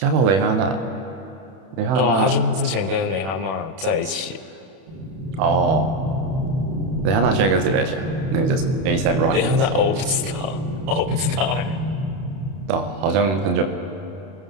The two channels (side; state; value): left; late; 31 ms